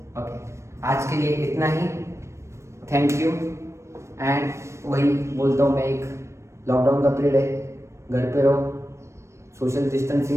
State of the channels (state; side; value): late; left; 0.13 ms